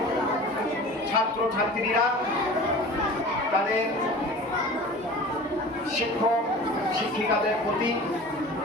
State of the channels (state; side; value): normal; both; correlation 0.39